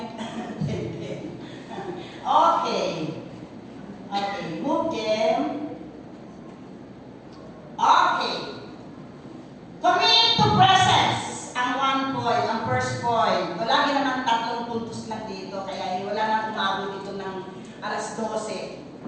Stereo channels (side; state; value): both; identical; correlation 1.00